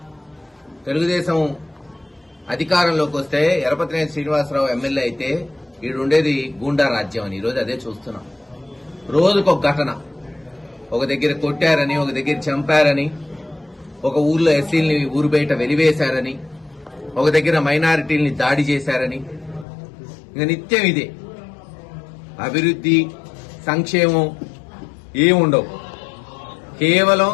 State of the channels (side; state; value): right; drops out; at 19.7 s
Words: తెలుగుదేశం అధికారంలోకి వస్తే ఎరపతినేని శ్రీనివాసరావు ఎమ్మెల్యే అయితే ఈడుండేది గూండా రాజ్యం అని. ఈరోజు అదే చూస్తున్నాం. రోజుకొక ఘటన. ఒక దగ్గర కొట్టారని, ఒక దగ్గర చంపారని, ఒక ఊర్లో ఎస్సీల్ని ఊరు బయట వెలివేశారని, ఒక దగ్గర మైనారిటీల్ని దాడి చేశారని. ఇక నిత్యం ఇదే. అభివృద్ధి, సంక్షేమం ఏముండవు. కేవలం